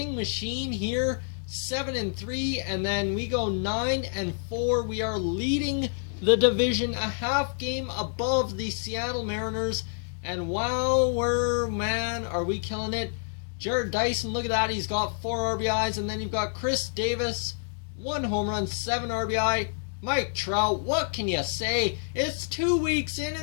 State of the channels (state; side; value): silent; right; digital silence